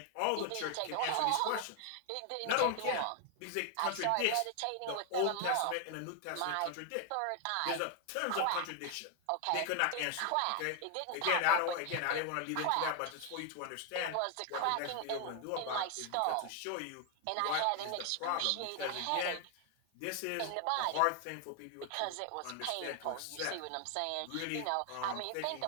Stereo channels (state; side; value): different; both; correlation 0.00